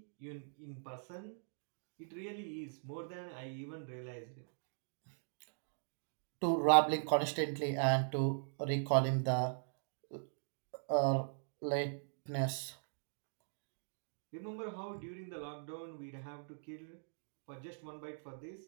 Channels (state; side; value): silent; left; digital silence